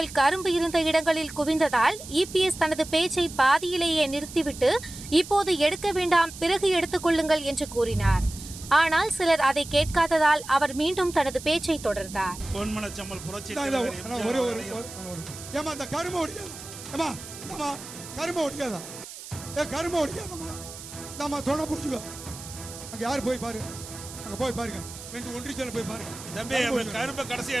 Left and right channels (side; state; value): right; noise; hiss, 13 dB below the sound